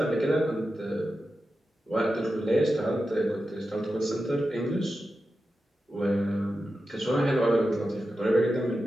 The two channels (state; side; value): normal; both; correlation 0.91